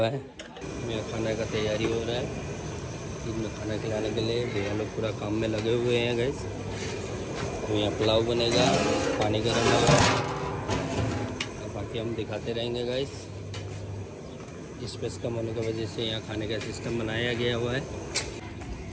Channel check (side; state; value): both; identical; correlation 1.00